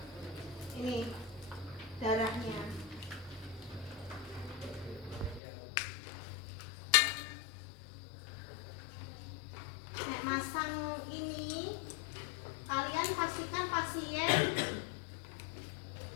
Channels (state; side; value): drops out; right; at 5.4 s